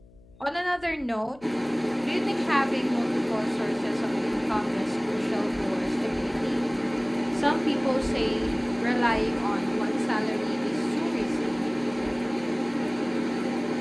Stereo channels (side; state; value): left; noise; hum, 25 dB below the sound